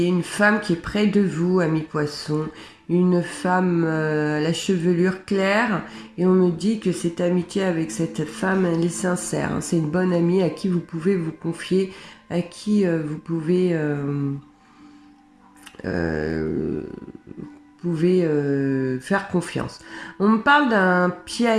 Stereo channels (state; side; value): identical; both; correlation 1.00